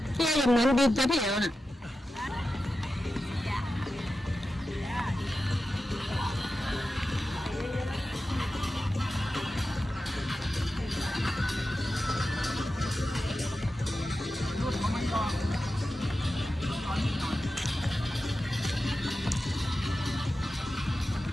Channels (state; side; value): normal; both; correlation 0.92